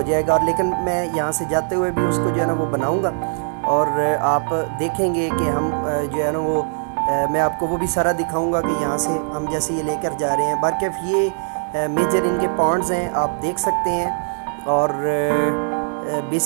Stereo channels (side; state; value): left; silent; digital silence